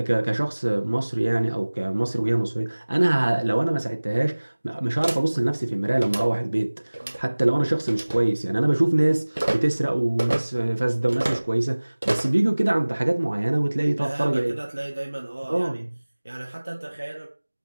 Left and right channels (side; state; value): both; inverted; correlation -1.00